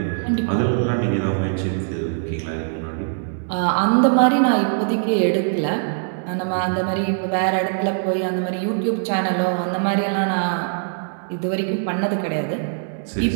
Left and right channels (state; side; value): silent; left; digital silence